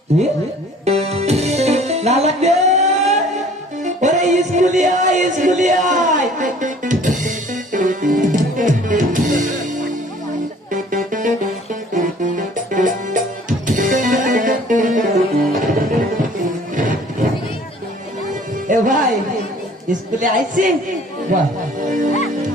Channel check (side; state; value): both; normal; correlation 0.52